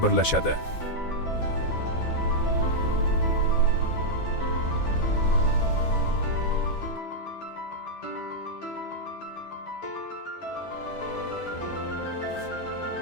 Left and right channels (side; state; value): right; late; 12 ms